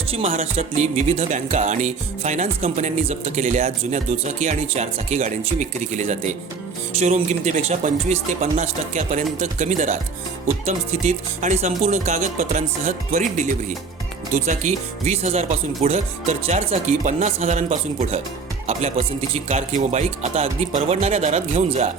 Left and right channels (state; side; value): quieter; left; 4.7 dB